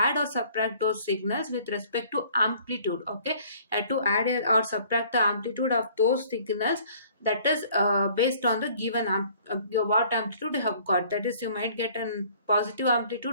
or subtract those signals with respect to amplitude. Okay, you have to add or subtract the amplitude of those signals, that is based on the given what amplitude you have got. That is, you might get a positive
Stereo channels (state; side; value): inverted; both; correlation -0.55